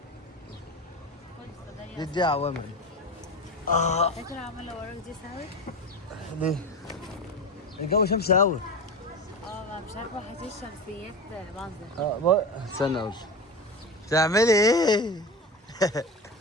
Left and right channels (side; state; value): both; normal; correlation 0.25